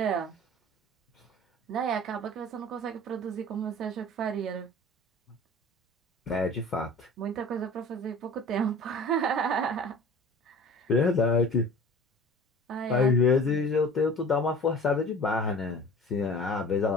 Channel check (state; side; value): normal; both; correlation 0.42